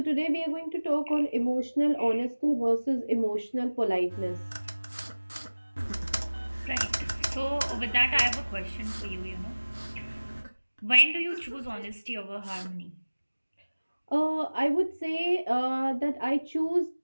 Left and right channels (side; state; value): both; inverted; correlation -1.00